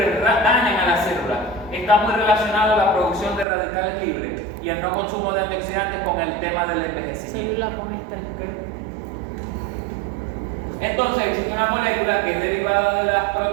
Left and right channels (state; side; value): drops out; left; at 3.5 s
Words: dañan a la célula. Está muy relacionado la producción de radicales libres y el no consumo de antioxidantes con el tema del envejecimiento. Célula con estrés. Entonces existe una molécula que es derivada de las